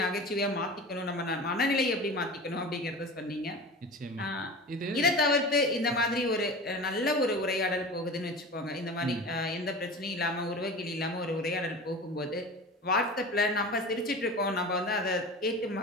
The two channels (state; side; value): normal; both; correlation 0.34